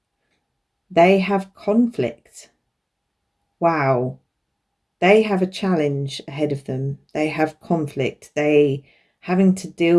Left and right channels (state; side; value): identical; both; correlation 1.00